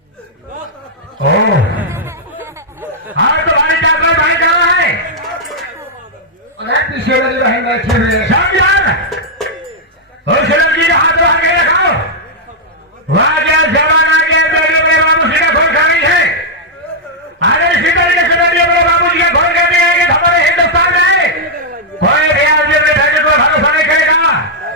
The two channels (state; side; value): normal; both; correlation -0.05